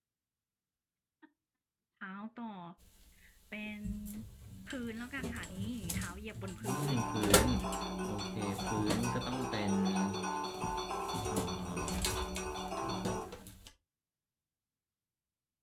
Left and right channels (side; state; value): both; identical; correlation 1.00